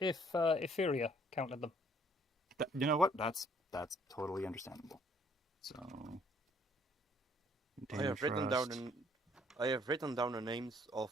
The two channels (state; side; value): normal; both; correlation 0.62